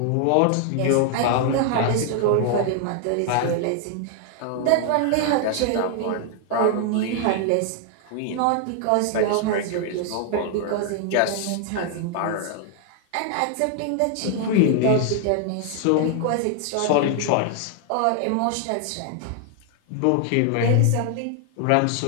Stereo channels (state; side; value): different; both; correlation 0.00